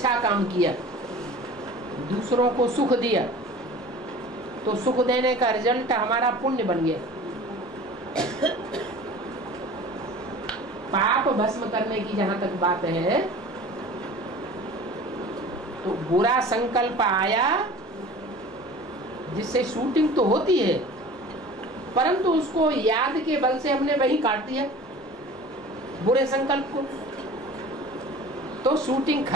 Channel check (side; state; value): both; normal; correlation 0.41